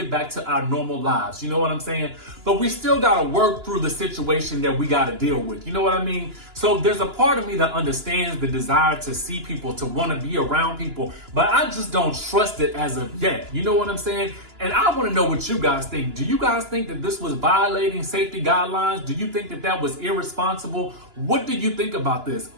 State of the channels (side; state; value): left; late; 2.9 ms